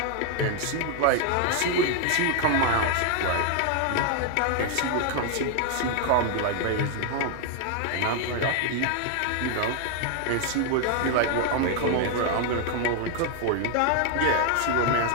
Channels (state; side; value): different; both; correlation 0.00